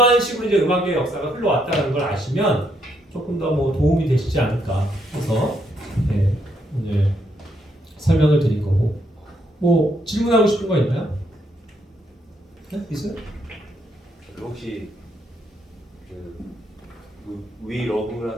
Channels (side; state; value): both; normal; correlation 0.75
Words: 식으로 이제 음악의 역사가 흘러왔다는 걸 아시면 조금 더 뭐 도움이 되시지 않을까 해서 오늘 설명을 드린 거고. 뭐 질문하고 싶은 거 있나요? 네? 있어요? 혹시 We